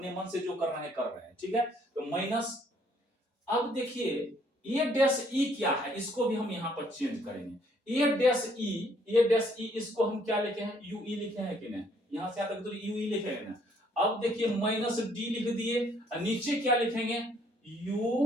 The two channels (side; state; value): both; normal; correlation 0.65